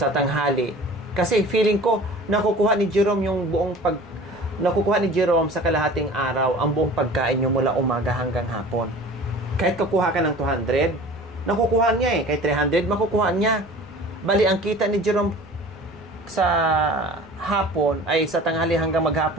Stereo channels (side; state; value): right; noise; rumble, 29 dB below the sound